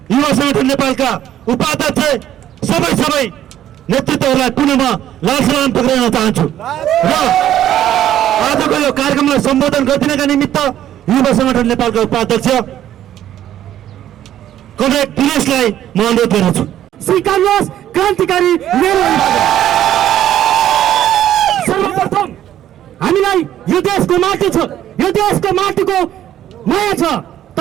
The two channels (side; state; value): left; quieter; 11.7 dB